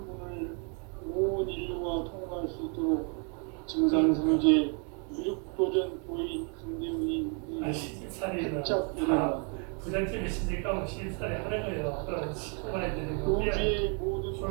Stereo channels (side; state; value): left; quieter; 38.5 dB